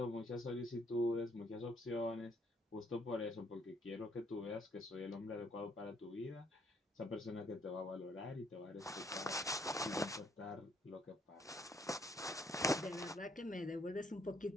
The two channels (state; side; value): normal; both; correlation 0.68